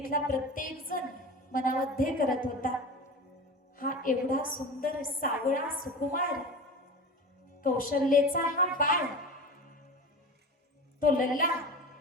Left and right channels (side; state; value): both; normal; correlation 0.31